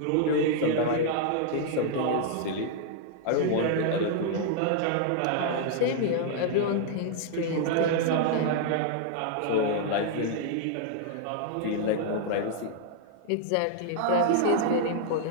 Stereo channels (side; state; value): both; different; correlation -0.01